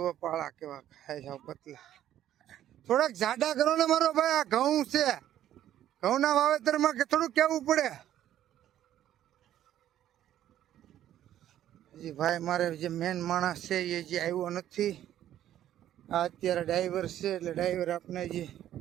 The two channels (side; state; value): left; quieter; 11.9 dB